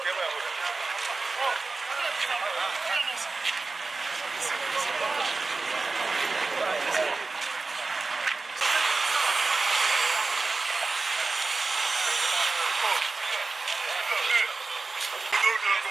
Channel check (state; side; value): quieter; left; 3.8 dB